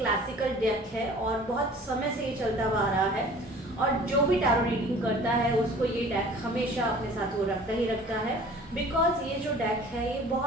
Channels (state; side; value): normal; both; correlation 0.47